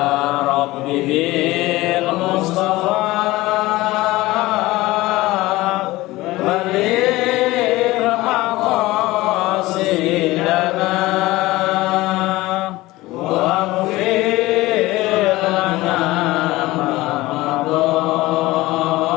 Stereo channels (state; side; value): quieter; right; 19.0 dB